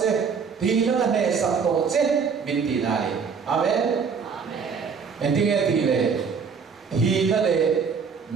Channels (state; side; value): quieter; left; 5.9 dB